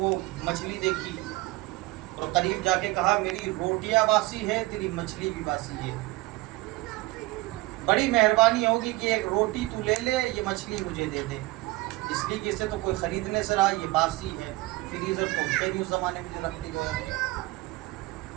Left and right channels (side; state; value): left; quieter; 20.4 dB